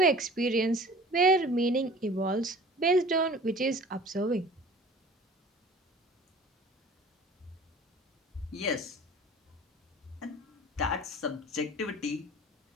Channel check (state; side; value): normal; both; correlation 0.45